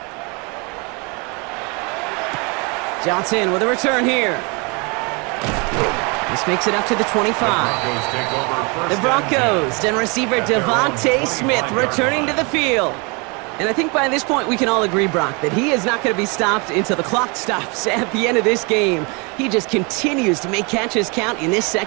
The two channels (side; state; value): left; quieter; 30.7 dB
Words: Johnson with a return here. This makes it up to the 25. The Broncos and receiver Devontae Smith returning to the field. And I think by this point we can all agree, Brock, that he is not going to be stopped until the clock stops at the end of this game. He just continues to make catches count in this